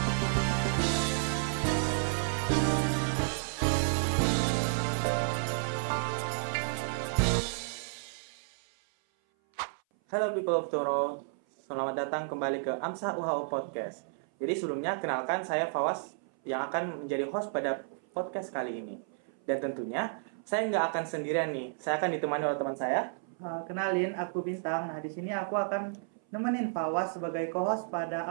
Halo people of Tomorrow, selamat datang kembali ke AMSA UHO Podcast. Jadi sebelumnya kenalkan saya Fawas yang akan menjadi host pada podcast kali ini. Dan tentunya saya nggak akan sendirian nih, saya akan ditemani oleh teman saya. Kenalin, aku Bintang. Nah, di sini aku akan nemenin Fawas sebagai co-host pada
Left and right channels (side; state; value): left; silent; 56 dB below the other